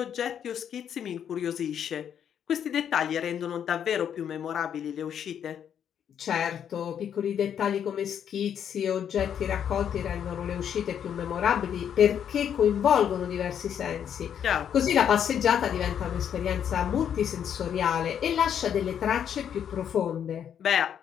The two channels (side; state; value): right; quieter; 8.8 dB